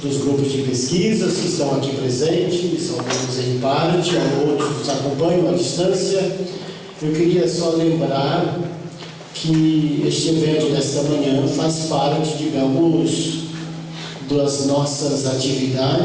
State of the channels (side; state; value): both; identical; correlation 1.00